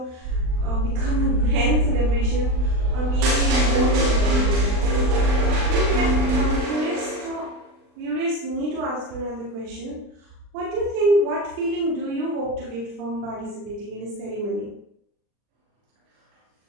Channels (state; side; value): late; left; 39 ms